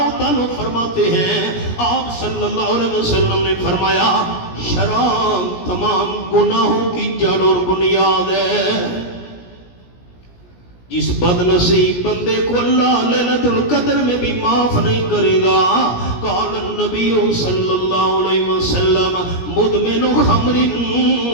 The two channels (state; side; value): late; right; 17 ms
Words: تعالیٰ فرماتے ہیں آپ صلی اللہ علیہ وسلم نے فرمایا شراب تمام گناہوں کی جڑ اور بنیاد ہے. جس بد نصیب بندے کو اللہ لیلۃ القدر میں بھی معاف نہیں کرے گا. قال النبی صلی اللہ علیہ وسلم مدمن خمر